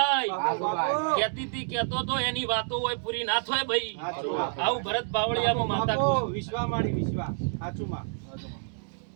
કેતી તી કેતો તો એની વાતો હોય પૂરી ના થાય ભાઈ. આવું ભરત બાવળિયામાં માતા વિશ્વા માડી વિશ્વા સાચું માં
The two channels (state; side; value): silent; left; 57 dB below the other